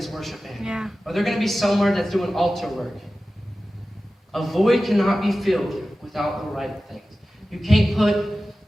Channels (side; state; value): both; normal; correlation 0.95